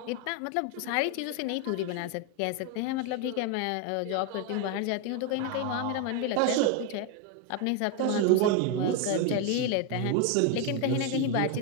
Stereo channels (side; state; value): both; different; correlation 0.01